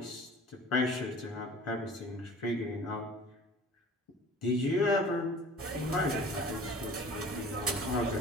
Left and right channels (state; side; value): normal; both; correlation 0.44